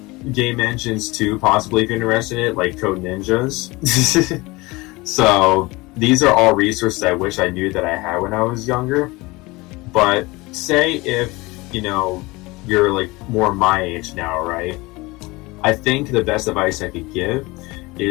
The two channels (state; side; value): quieter; right; 22.7 dB